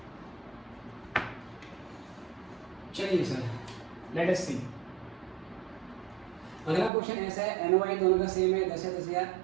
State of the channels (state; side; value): drops out; left; at 6.9 s